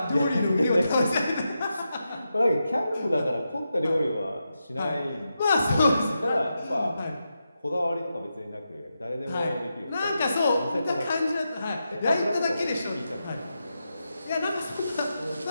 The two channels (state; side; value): inverted; both; correlation -0.88